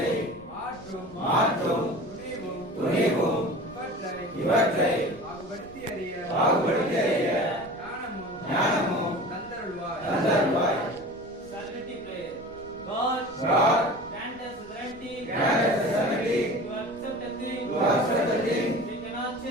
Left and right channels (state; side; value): noise; right; rumble, 23 dB below the sound